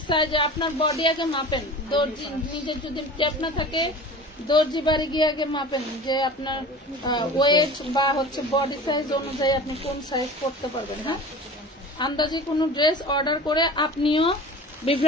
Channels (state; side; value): normal; both; correlation 0.38